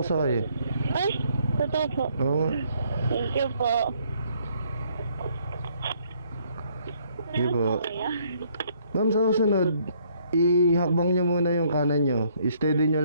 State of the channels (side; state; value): both; inverted; correlation -0.66